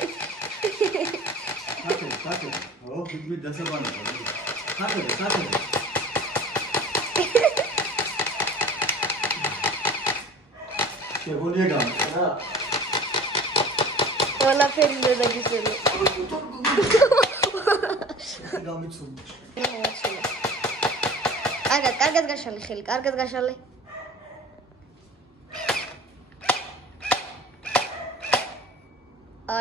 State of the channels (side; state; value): both; normal; correlation 0.42